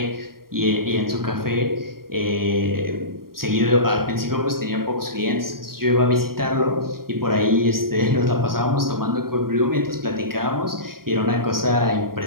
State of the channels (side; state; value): left; late; 0.93 ms